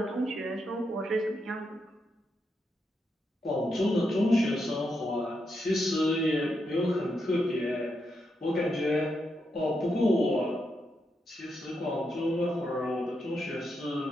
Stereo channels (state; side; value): normal; both; correlation 0.83